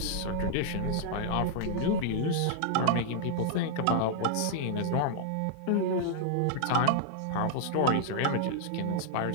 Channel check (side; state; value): both; different; correlation 0.00